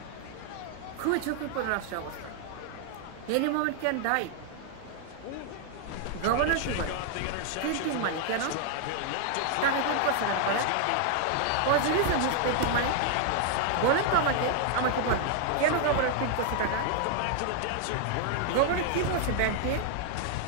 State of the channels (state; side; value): different; both; correlation 0.00